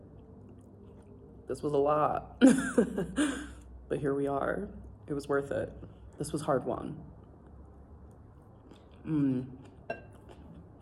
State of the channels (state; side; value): identical; both; correlation 1.00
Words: This was a lot, but here we are. It was worth it. This was hard won.